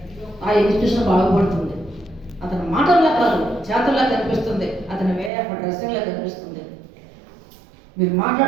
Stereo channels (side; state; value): left; drops out; at 5.3 s